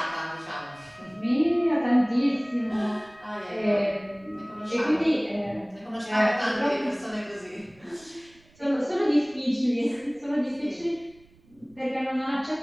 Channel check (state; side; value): noise; right; rumble, 29 dB below the sound